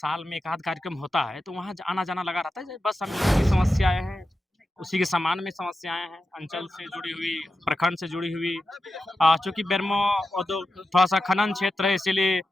में 1 आध कार्यक्रम होता है, तो वहाँ ज आना-जाना लगा रहता है। बस हम लोगों की समस्याएँ हैं, उसी के समान में समस्याएँ हैं, अंचल से जुड़ी हुई, प्रखंड से जुड़ी हुई चूँकि बेरमो थोड़ा-सा खनन क्षेत्र है इसीलिए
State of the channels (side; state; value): both; normal; correlation 0.91